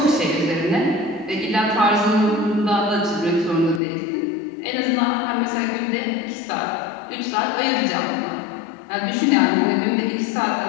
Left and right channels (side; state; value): right; drops out; at 3.8 s